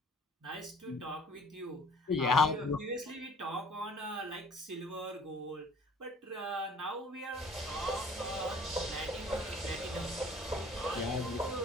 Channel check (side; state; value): both; normal; correlation 0.52